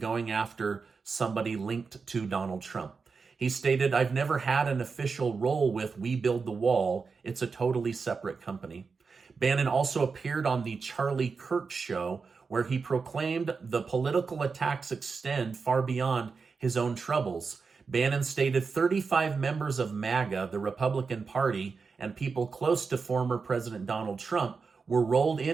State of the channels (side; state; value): left; quieter; 5.0 dB